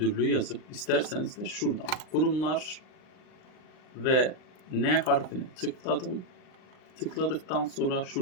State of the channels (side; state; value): right; late; 39 ms